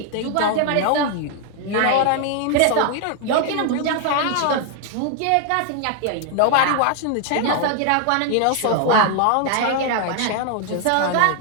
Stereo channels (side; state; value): both; different; correlation 0.00